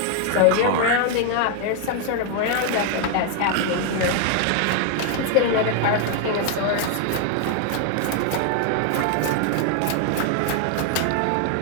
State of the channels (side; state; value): both; different; correlation 0.00